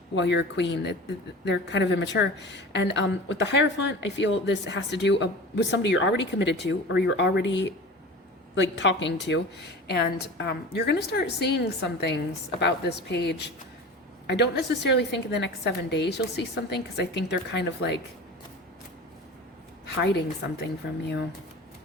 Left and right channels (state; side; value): normal; both; correlation 0.35